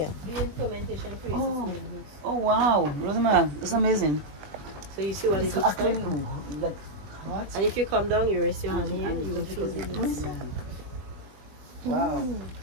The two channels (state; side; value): late; left; 20 ms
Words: During fermentation process. Oh. Oh wow, Rosamara, that's amazing. So you see what it It's looks actually like? like hot. And if you come down, you rest your hand here, you will feel the heat. Wow.